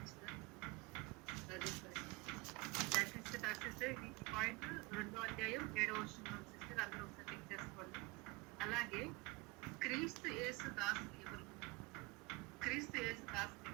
సిస్టర్ ఈ పాయింట్ 2వ అధ్యాయం 7వ వచనం సిస్టర్ అందరూ ఒకసారి చెక్ చేసుకోండి. అలాగే క్రీస్తు యేసు దాసులు ఎవరు? క్రీస్తు యేసు దాసులు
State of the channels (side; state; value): left; quieter; 25.0 dB